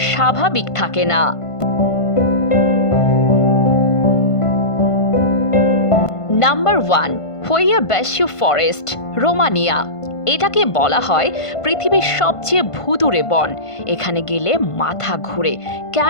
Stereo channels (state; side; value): late; right; 1.5 ms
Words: স্বাভাবিক থাকে না। Number 1, Hoia Baciu forest, Romania. এটাকে বলা হয় পৃথিবীর সবচেয়ে ভুতুড়ে বন। এখানে গেলে মাথা ঘুরে,